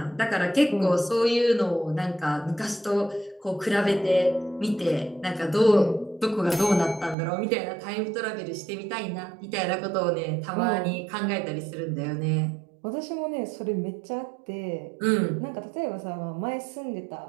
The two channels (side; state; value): left; drops out; at 7.2 s